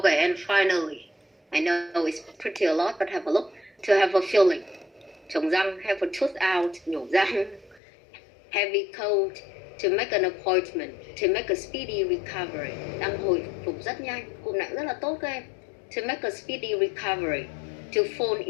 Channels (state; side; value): drops out; right; at 7.8 s